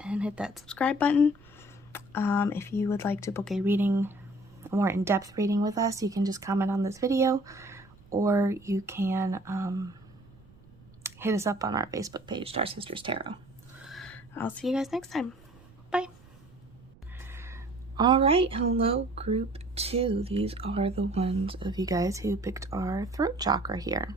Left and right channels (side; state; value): right; noise; rumble, 25 dB below the sound